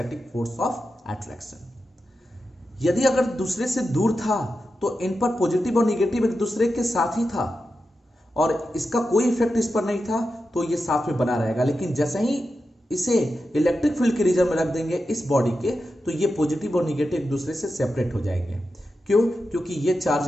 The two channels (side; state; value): both; normal; correlation 0.90